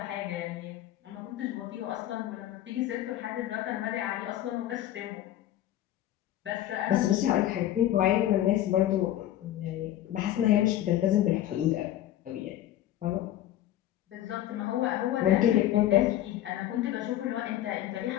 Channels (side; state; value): right; quieter; 12.9 dB